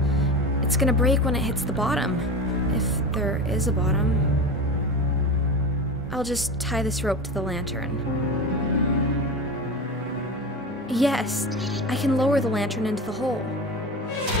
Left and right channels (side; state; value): both; normal; correlation 0.26